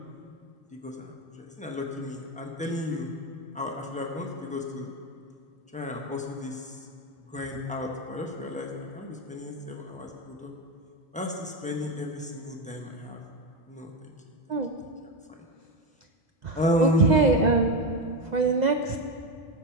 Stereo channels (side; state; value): both; normal; correlation 0.13